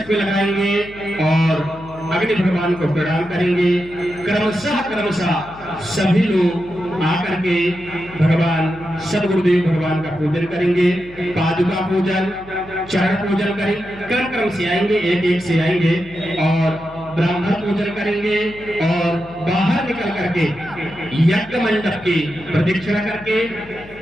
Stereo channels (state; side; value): noise; left; hum, 20 dB below the sound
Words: पे लगाएंगे और अग्नि भगवान को प्रणाम करेंगे। क्रमशः सभी लोग आकर के भगवान सदगुरुदेव भगवान का पूजन करेंगे, पादुका पूजन, चरण पूजन करेंगे, क्रम से आएंगे, एक एक से आएंगे और ब्राह्मण पूजन करेंगे और बाहर निकल करके यज्ञ मंडप की प्रदक्षिणा करके,